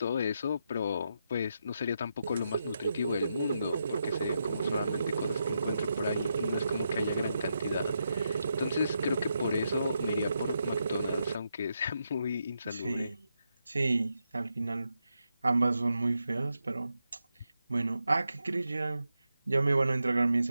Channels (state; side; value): inverted; both; correlation -0.84